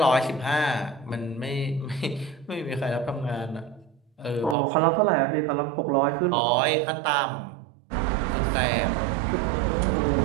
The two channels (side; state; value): left; drops out; at 4.5 s